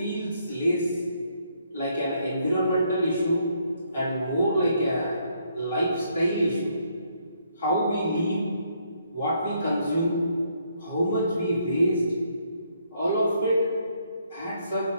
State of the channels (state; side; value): inverted; both; correlation -0.71